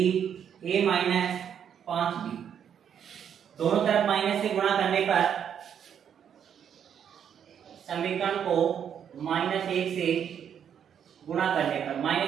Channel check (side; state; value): left; quieter; 8.5 dB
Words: a - 5b, दोनों तरफ माइनस से गुणा करने पर समीकरण को -1 से गुणा करने पर,